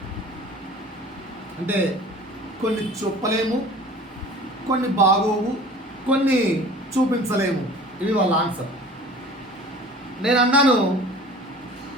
అంటే కొన్ని చెప్పలేము, కొన్ని బాగోవు, కొన్ని చూపించలేము. ఇవి వాళ్ళ ఆన్సర్. నేను అన్నాను,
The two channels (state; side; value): normal; both; correlation 0.44